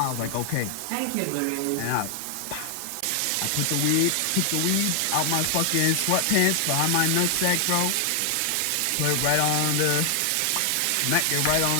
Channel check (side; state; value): both; different; correlation 0.00